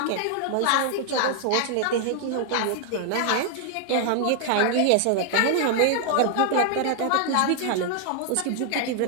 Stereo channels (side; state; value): both; different; correlation 0.00